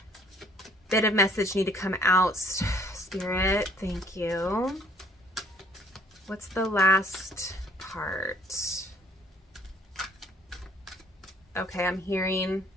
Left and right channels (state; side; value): normal; both; correlation 0.59